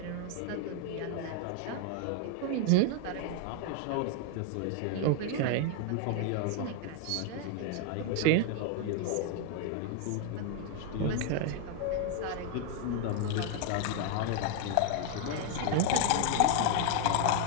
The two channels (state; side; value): different; both; correlation 0.00